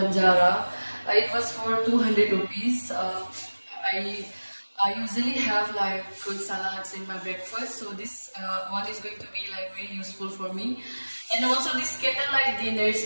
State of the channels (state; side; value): inverted; both; correlation -1.00